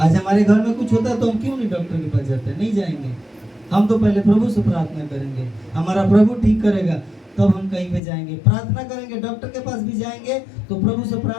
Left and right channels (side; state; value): right; drops out; at 8.0 s